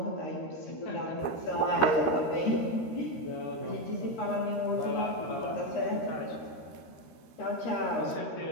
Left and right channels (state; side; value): late; right; 13 ms